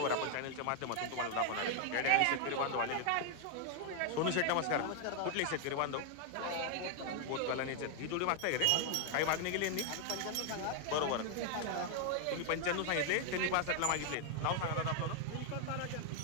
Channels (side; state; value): both; different; correlation 0.00